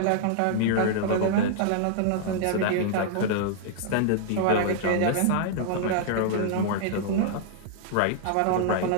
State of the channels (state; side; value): different; both; correlation -0.01